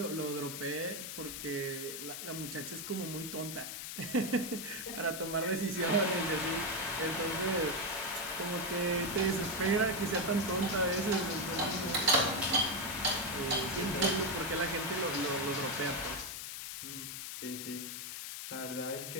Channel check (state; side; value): noise; left; hiss, 7 dB below the sound